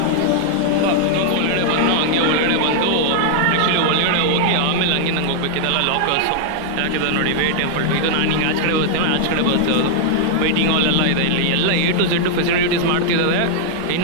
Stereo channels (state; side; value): different; both; correlation -0.01